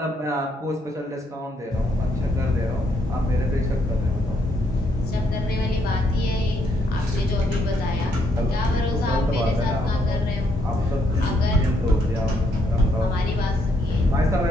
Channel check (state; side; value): normal; both; correlation 0.73